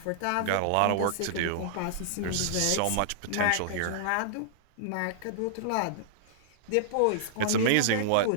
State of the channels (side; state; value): both; different; correlation -0.01